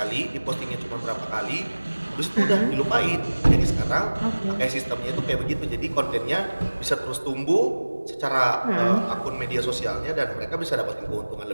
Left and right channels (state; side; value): inverted; both; correlation -1.00